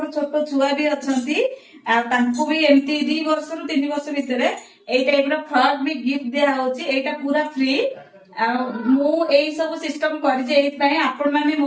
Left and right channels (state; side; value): identical; both; correlation 1.00